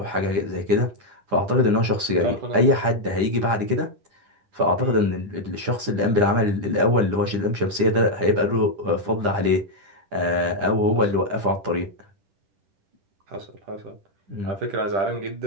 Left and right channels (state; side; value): late; left; 9.8 ms